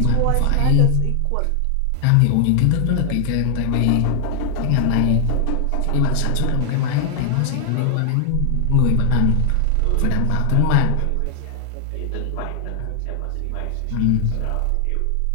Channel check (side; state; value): both; different; correlation 0.00